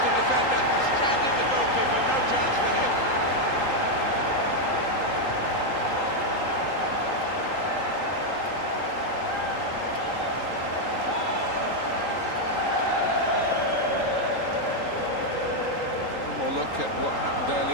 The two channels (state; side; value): late; right; 3.8 ms